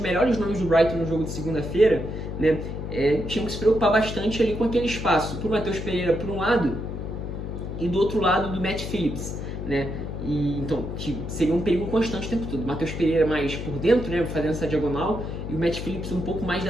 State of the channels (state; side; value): noise; left; hum, 6 dB below the sound